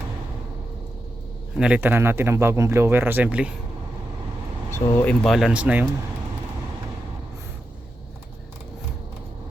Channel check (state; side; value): normal; both; correlation 0.88